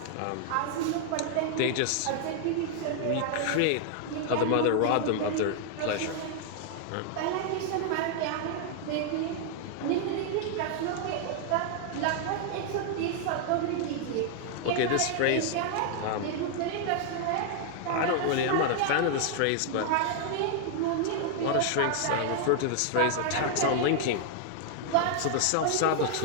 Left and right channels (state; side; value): different; both; correlation 0.00